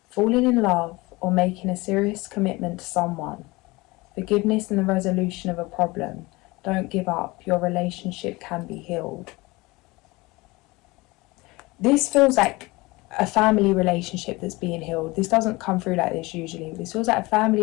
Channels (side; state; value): right; quieter; 22.6 dB